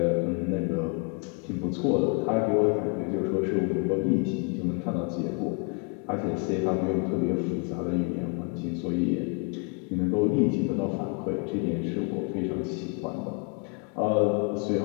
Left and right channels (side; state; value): right; quieter; 35.3 dB